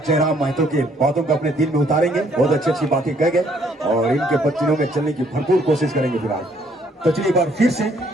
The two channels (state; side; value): normal; both; correlation 0.66